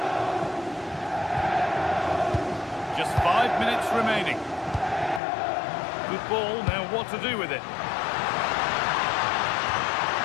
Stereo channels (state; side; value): drops out; right; at 5.2 s